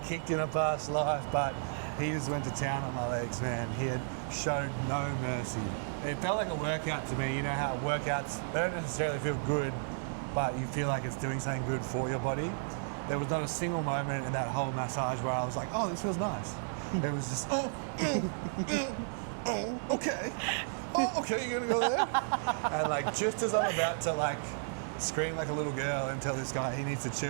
in a past life, but he just went to town on my legs, man. He had showed no mercy. It felt like a workout to me. You know how workouts, they don't necessarily feel good, but you feel like it's doing something good for your body. There was not a single moment in that whole massage where I was like, oh, this feels nice. It was just, okay. Oh, okay, you're gonna go there? And like, just as I'm about to like scream like a little girl and tell this guy he needs to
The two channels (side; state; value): left; silent; digital silence